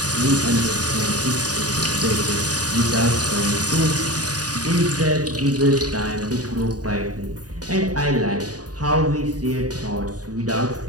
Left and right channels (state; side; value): late; left; 0.68 ms